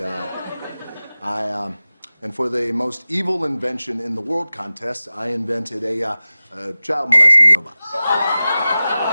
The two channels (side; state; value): both; inverted; correlation -0.96